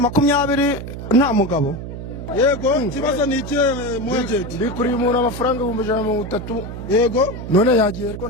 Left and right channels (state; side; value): noise; right; hum, 9 dB below the sound